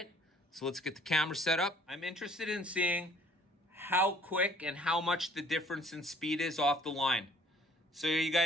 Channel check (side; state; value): both; normal; correlation 0.57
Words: so let's get the camera set up. I'm interested in seeing how quick and how much the difference in speed is off the line. So are you